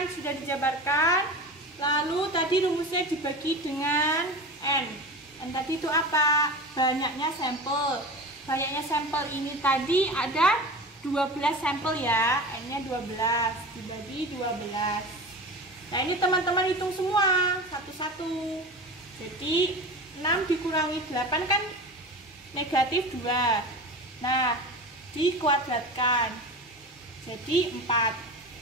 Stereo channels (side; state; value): both; normal; correlation 0.31